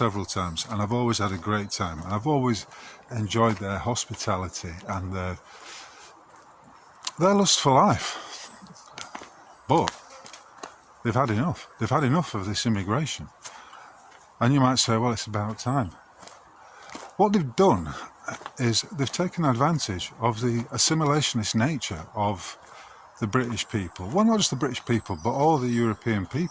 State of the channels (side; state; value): both; identical; correlation 1.00